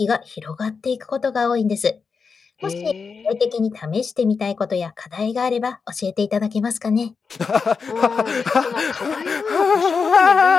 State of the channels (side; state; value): right; quieter; 5.3 dB